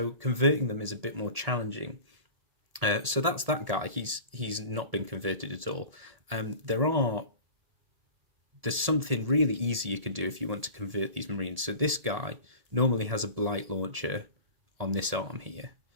converting them is a bit more challenging. So that's that guy. He's not been converted at all. There's something really easy you can do if you want to convert these Marines. So this guy normally has a blight launcher on this arm here.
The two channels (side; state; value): left; late; 1.8 ms